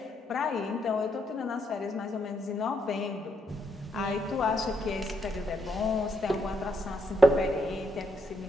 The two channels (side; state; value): both; normal; correlation 0.77